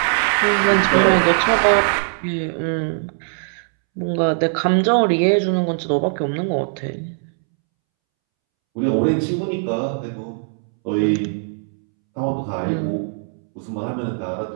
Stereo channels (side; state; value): left; silent; 66 dB below the other